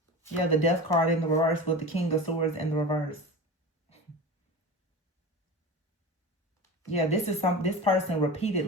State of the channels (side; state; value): both; normal; correlation 0.30